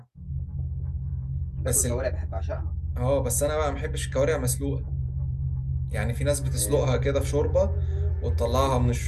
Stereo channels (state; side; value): identical; both; correlation 1.00